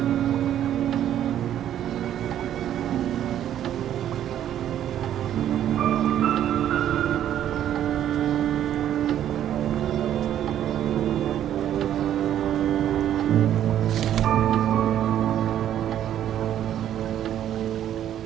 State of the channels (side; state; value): left; quieter; 10.9 dB